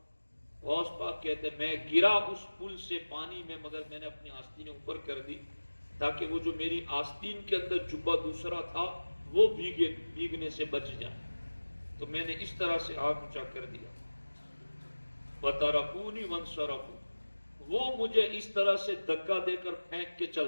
غوث پاک کہتے میں گرا اس پل سے پانی میں، مگر میں نے اپنی آستینیں اوپر کر دی تاکہ وہ جو میری آستین کے اندر جبہ دوسرا تھا وہ بھیگنے سے بچ جائے، تو میں نے اس طرح سے ہاتھ اونچا کر دیا۔ وَتَرَكُونِ وَانْصَرَفُوا، وہ مجھے اس طرح سے دھکا دے کر پھینک کے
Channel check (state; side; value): inverted; both; correlation -1.00